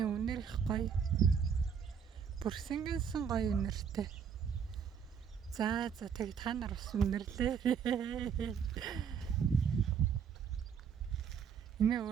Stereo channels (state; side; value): quieter; left; 7.2 dB